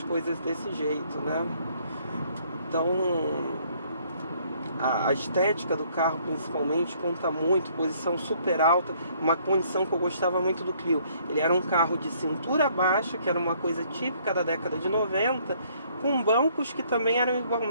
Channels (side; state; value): both; inverted; correlation -0.64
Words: coisas desse jeito, né? Então a estética do carro principalmente conta muito, posição super alta, uma condição que eu gostava muito do Clio. Ele era um carro de cintura baixa, que era uma coisa típica da década de 90, com bancos que também eram